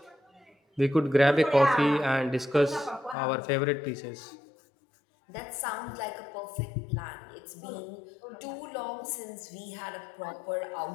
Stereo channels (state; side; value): drops out; right; at 3.2 s